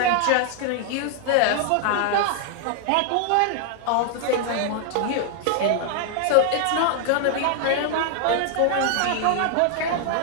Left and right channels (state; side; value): different; both; correlation 0.00